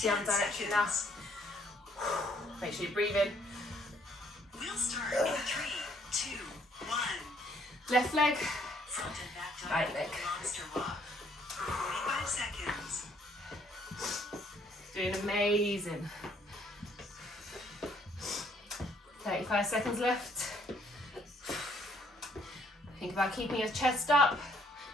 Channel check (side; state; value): both; normal; correlation 0.65